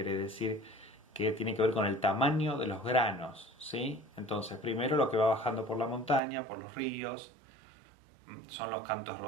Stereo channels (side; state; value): left; drops out; at 6.2 s